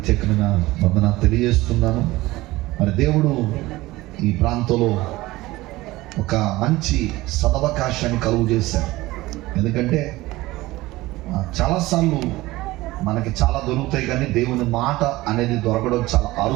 వందనాలు తెలియజేస్తున్నాను. మరి దేవుడు ఈ ప్రాంతంలో ఒక మంచి సదవకాశాన్ని కలుగు చేశారు. ఎందుకంటే చాలాసార్లు మనకి చాలా దొరుకుతాయి, కానీ దేవుని మాట అనేది దొరకడం చాలా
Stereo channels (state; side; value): quieter; left; 18.8 dB